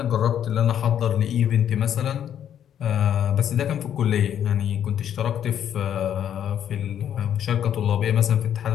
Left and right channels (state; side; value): quieter; right; 9.7 dB